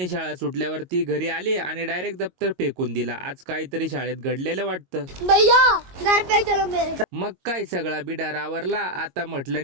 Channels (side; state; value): left; late; 22 ms